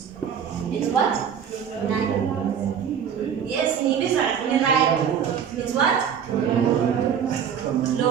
It's what? Yes, it's what?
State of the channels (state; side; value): quieter; left; 8.0 dB